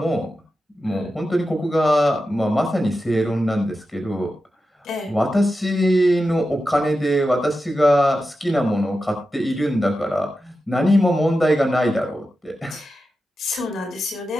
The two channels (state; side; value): normal; both; correlation 0.91